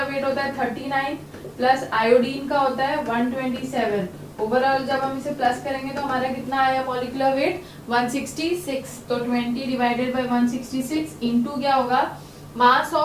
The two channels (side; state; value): both; identical; correlation 1.00